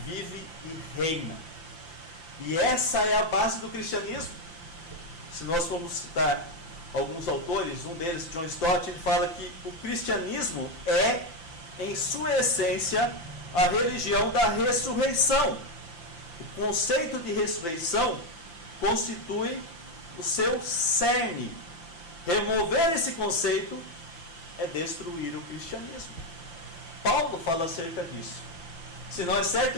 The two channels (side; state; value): right; late; 5.8 ms